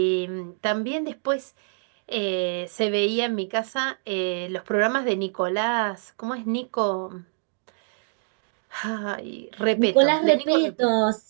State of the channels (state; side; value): silent; left; digital silence